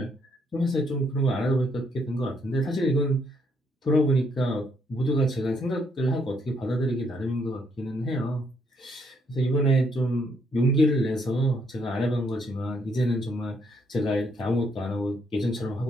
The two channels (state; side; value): normal; both; correlation 0.72